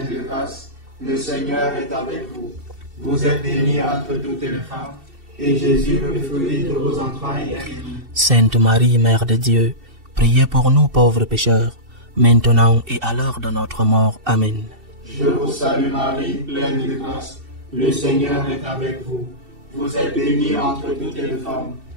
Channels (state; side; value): late; left; 2.7 ms